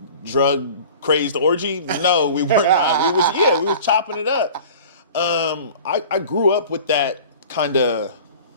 drug crazed orgy? No, we were not. We was chopping it up. I grew up with that kind of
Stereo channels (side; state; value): both; inverted; correlation -0.41